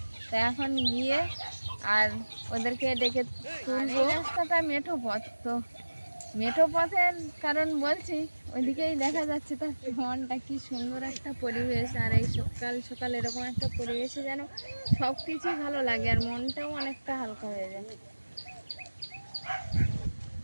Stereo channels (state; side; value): inverted; both; correlation -1.00